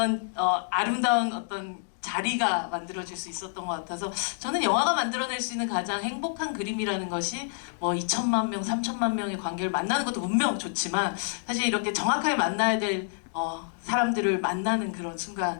아름다운 어떤 자리가 만들어질 수 있었던 것 같아서 저는 영화가 만들어낼 수 있는 가장 행복한 그림이라는 것이 뭐 2천만 명, 3천만 명의 관객을 만나는 것도 분명 좋지만 사실 이렇게 정확하게 만나야 될 사람들을 만나는 그런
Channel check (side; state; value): right; silent; digital silence